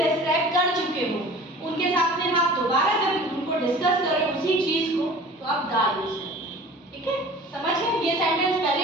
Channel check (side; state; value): both; normal; correlation 0.43